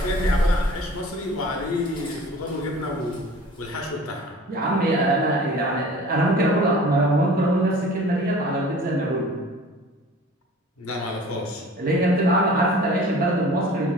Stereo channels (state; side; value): normal; both; correlation 0.45